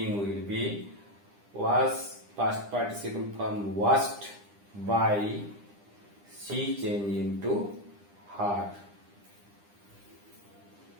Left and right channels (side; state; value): left; late; 9.9 ms